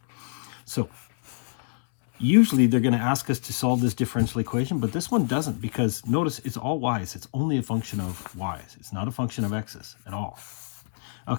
So usually they're going to ask us to solve this differential equation, but this one doesn't, because notice it's all y's. It's only a function of y's. It's not a function of x's at all.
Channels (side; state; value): right; silent; 61 dB below the other